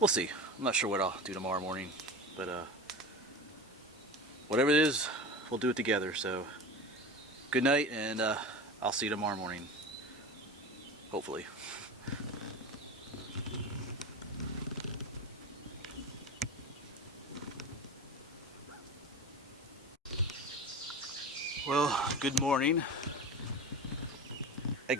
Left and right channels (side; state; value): both; normal; correlation 0.30